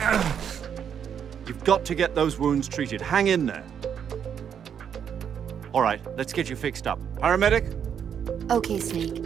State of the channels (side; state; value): left; quieter; 8.1 dB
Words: You've got to get those wounds treated. Hang in there. All right, let's get you fixed up. Paramedic? Okay,